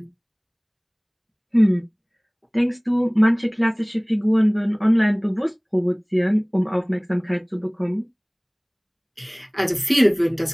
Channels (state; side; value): identical; both; correlation 1.00